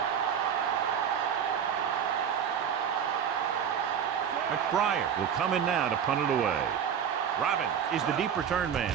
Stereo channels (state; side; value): quieter; left; 8.1 dB